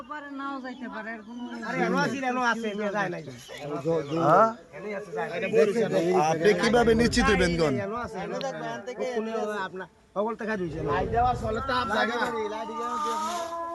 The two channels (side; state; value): both; identical; correlation 1.00